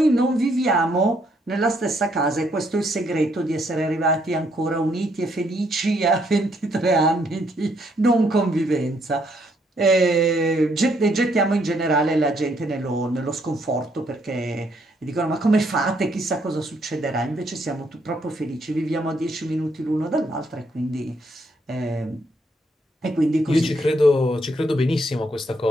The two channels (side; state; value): both; normal; correlation 0.71